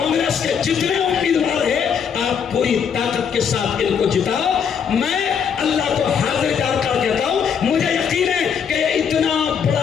के जितने उम्मीदवार हैं, आप पूरी ताकत के साथ इनको जिताओ। मैं अल्लाह को हाजिर जानकर कहता हूं, मुझे यकीन है कि इतना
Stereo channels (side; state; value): right; quieter; 7.2 dB